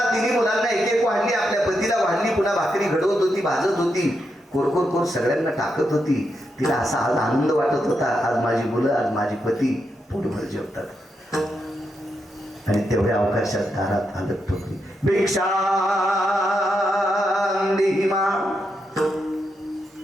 मुलांना एक एक वाढली. आपल्या पतीला वाढली. पुन्हा भाकरी घडवत होती, भाजत होती. कोर सगळ्यांना टाकत होती. तिला असा आज आनंद वाटत होता, आज माझी मुलं, आज माझी पती पोटभर जेवतात. आणि तेवढ्या अवकाशात दारात आलं ठोकली. भिक्षा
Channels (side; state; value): both; normal; correlation 0.83